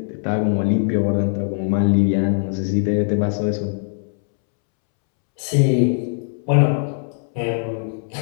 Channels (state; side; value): silent; right; 65 dB below the other